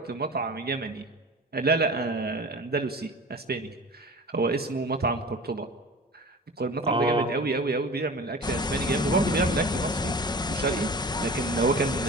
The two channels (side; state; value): both; normal; correlation 0.38